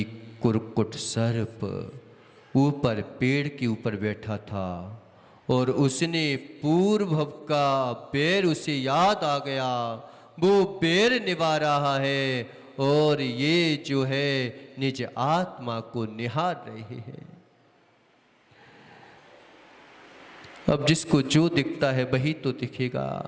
कुरकुट सर्प ऊपर पेड़ के ऊपर बैठा था और उसने पूर्व का पैर उसे याद आ गया, वो पैर निभा रहा है और ये जो है निज आत्मा को निहार रहे हैं। अब जिसको जो दिखता है वही तो दिखेगा।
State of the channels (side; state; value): both; identical; correlation 1.00